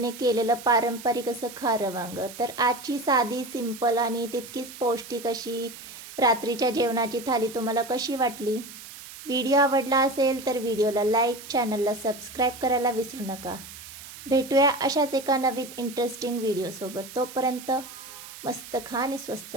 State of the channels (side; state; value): right; noise; hiss, 15 dB below the sound